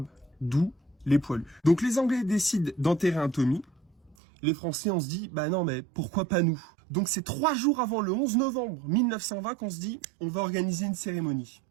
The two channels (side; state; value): left; drops out; at 4.2 s